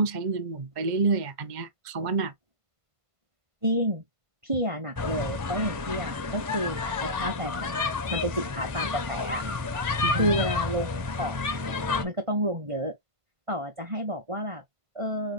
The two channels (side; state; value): left; late; 1.5 ms